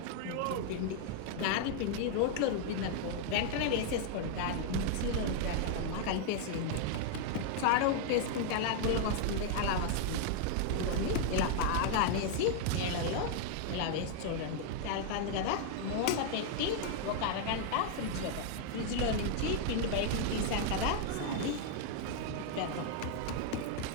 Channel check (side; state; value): both; different; correlation 0.00